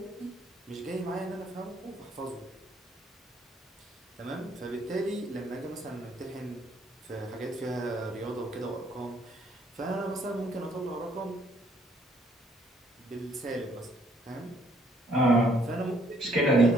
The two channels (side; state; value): both; normal; correlation 0.66